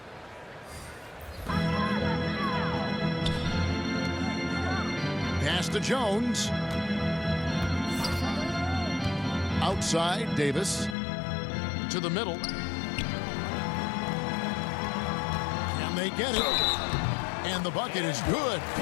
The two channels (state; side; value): drops out; right; at 11.0 s